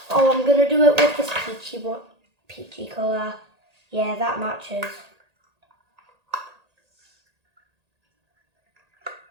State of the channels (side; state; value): left; late; 1.8 ms